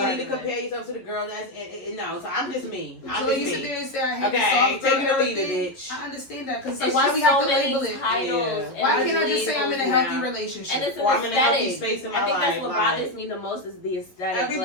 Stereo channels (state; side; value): late; right; 11 ms